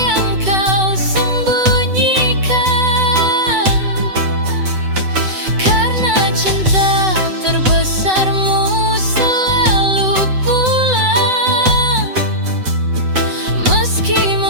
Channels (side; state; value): left; late; 7.9 ms